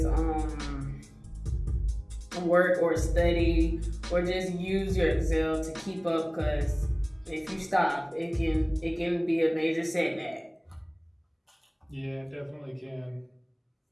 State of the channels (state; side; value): identical; both; correlation 1.00